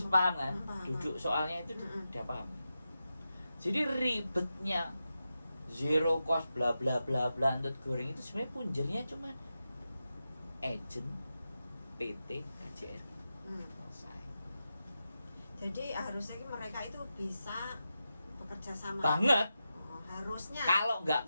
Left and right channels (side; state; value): both; inverted; correlation -0.90